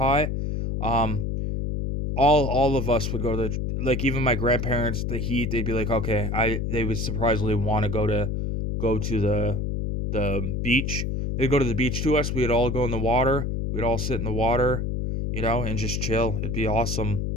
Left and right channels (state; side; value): noise; left; hum, 1 dB below the sound